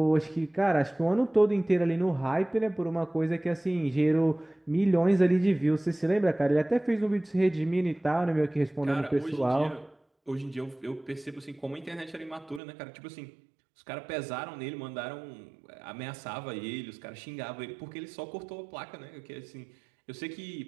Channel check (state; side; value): drops out; left; at 12.6 s